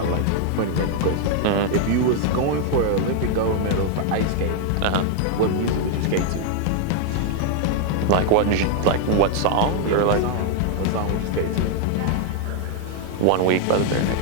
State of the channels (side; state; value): both; different; correlation 0.00